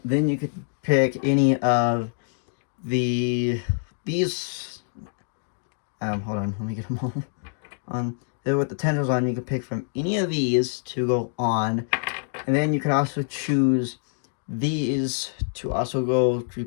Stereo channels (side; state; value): right; silent; digital silence